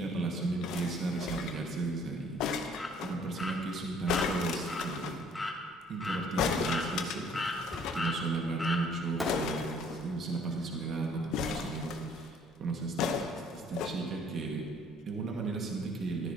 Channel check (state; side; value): normal; both; correlation 0.59